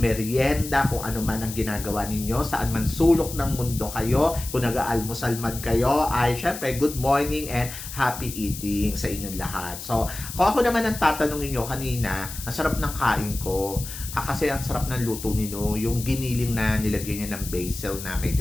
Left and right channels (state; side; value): noise; left; hiss, 10 dB below the sound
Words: kung ano man ang ginagawa ninyo, saan man sulok ng mundo kayo. Kung nag-aalmusal man kayo, ay syempre good morning and happy eating sa inyong lahat. So, kung ako naman ang tatanungin nyo kanina, ang sarap ng kain ko. Kasi ang sarap ng luto nino, yung giniling na nilagyan niya ng basil na